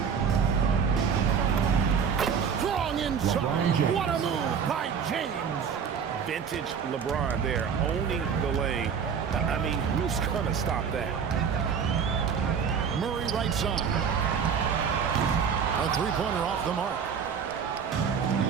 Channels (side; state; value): left; quieter; 6.8 dB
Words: Strong inside. What a move by James. Vintage LeBron there, owning the lane. I mean, who's going to stop that? Murray right side. A three-pointer off the mark.